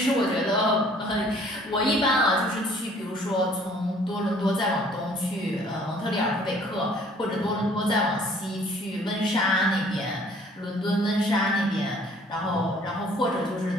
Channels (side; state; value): both; normal; correlation 0.56